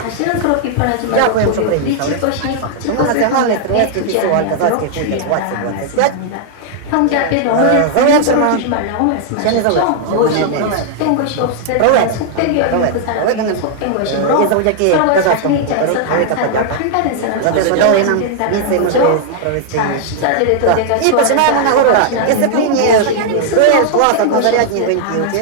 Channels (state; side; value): different; both; correlation -0.01